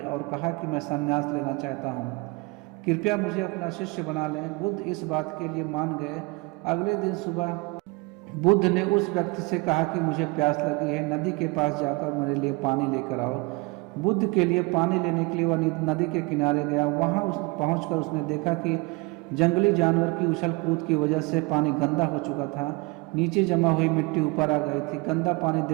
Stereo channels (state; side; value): quieter; left; 26.0 dB